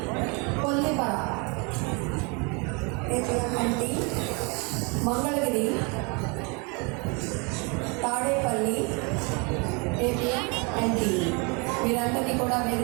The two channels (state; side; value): quieter; left; 31.8 dB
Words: కొల్లిపర ఏపీఎంఎన్టీ, మంగళగిరి తాడేపల్లి ఏపీఎంఎన్టీ వీరందరినీ కూడా